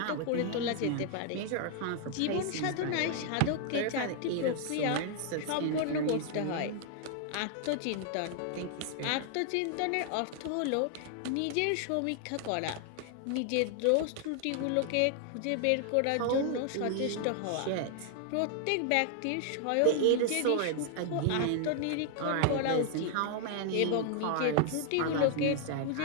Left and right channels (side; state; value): both; different; correlation 0.00